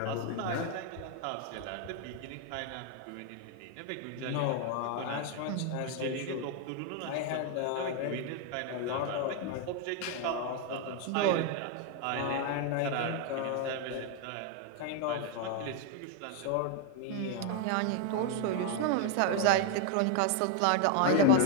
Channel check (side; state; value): both; different; correlation 0.01